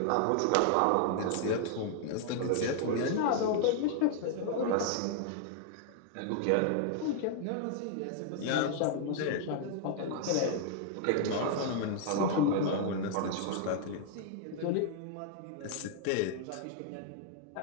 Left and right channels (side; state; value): both; different; correlation 0.00